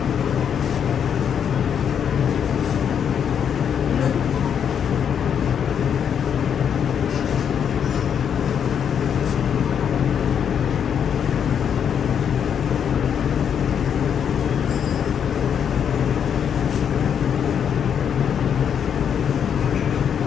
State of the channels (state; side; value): quieter; right; 8.1 dB